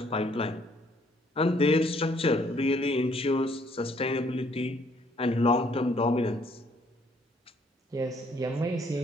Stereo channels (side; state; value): both; normal; correlation 0.65